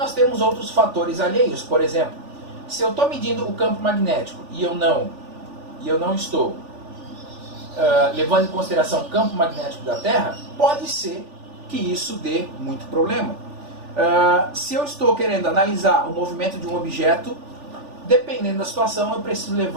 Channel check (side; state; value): left; late; 3.4 ms